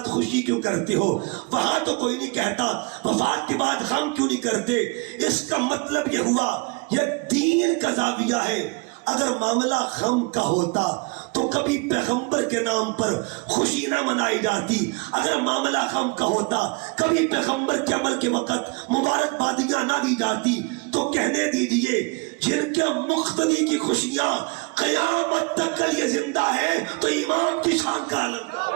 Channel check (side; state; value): left; quieter; 29.8 dB